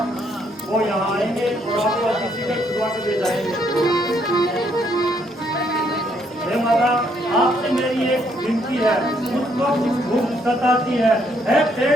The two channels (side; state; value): both; normal; correlation 0.71